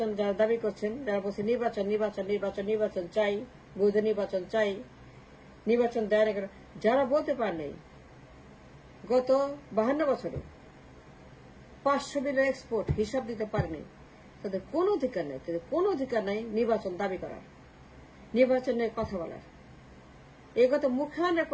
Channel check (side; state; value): both; identical; correlation 1.00